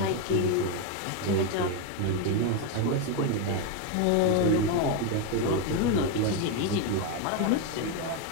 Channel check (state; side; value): different; both; correlation 0.02